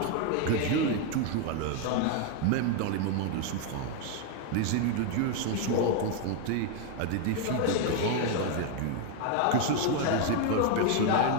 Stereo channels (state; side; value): different; both; correlation 0.01